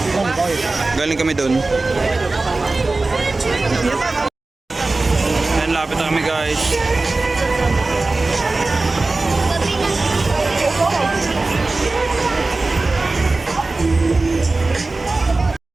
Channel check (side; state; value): left; quieter; 3.4 dB